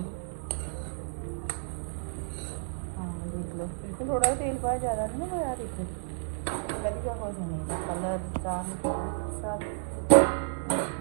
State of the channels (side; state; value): left; silent; digital silence